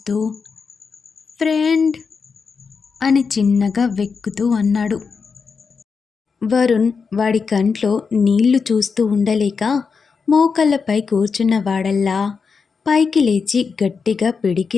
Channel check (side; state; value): right; quieter; 5.4 dB